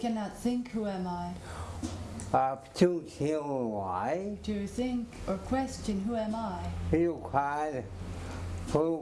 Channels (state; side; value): identical; both; correlation 1.00